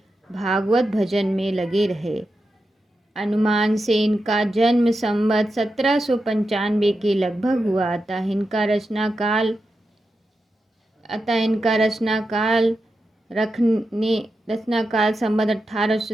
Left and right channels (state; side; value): normal; both; correlation 0.89